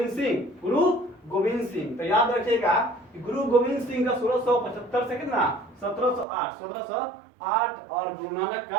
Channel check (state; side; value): drops out; left; at 6.2 s